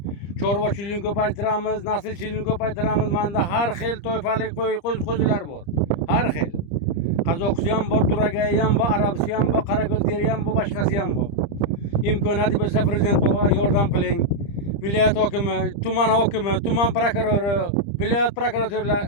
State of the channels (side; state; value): right; late; 30 ms